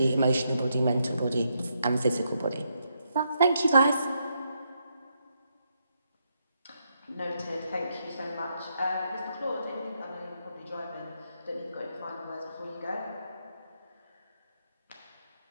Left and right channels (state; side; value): inverted; both; correlation -0.79